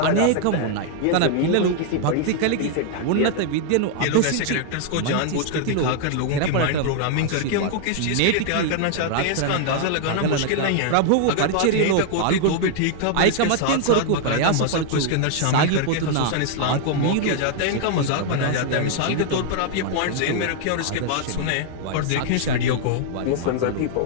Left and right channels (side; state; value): both; different; correlation 0.00